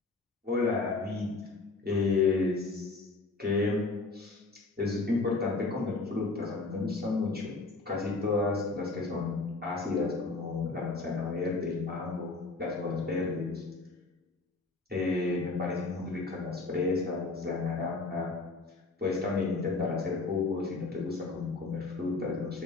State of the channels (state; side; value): quieter; right; 3.6 dB